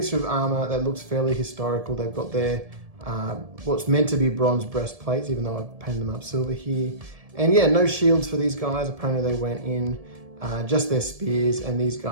of armor that looks fairly historical. They've got their what's meant to be bronze breastplates, even though I've painted them up silver here. And yeah, no shields for these guys. Apparently they went in just their spears, and these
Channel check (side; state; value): left; late; 1.7 ms